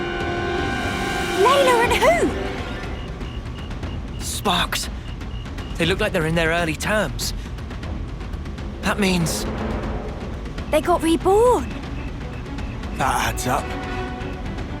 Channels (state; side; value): identical; both; correlation 1.00